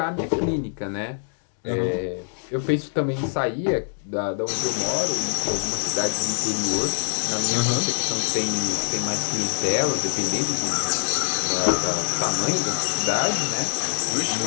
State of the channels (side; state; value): right; silent; digital silence